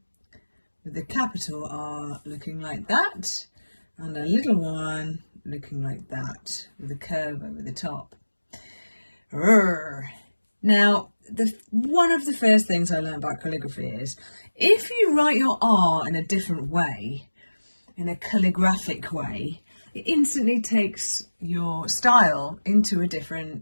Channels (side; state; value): both; inverted; correlation -1.00